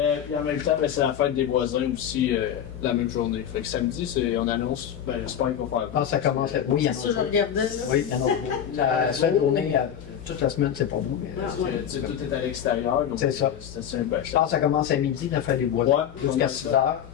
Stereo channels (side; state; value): right; quieter; 9.3 dB